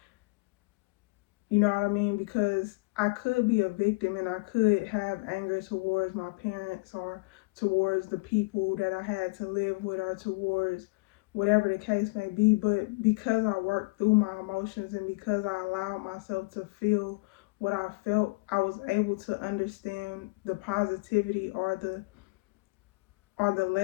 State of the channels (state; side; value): quieter; right; 26.8 dB